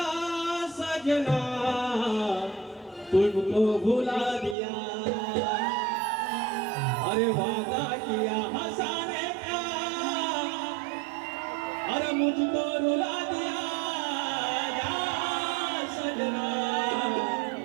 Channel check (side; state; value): left; drops out; at 4.5 s